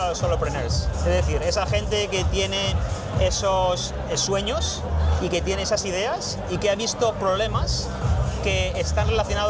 los solopreneurs, es decir, esa gente que tiene esos sueños y que tiene esas ideas y que ha visto problemas que están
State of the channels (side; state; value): both; identical; correlation 1.00